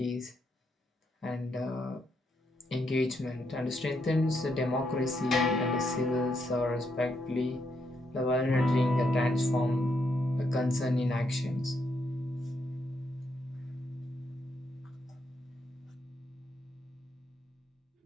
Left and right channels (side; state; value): both; normal; correlation 0.78